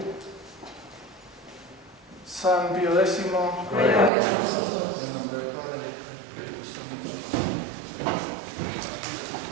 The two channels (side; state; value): left; drops out; at 4.1 s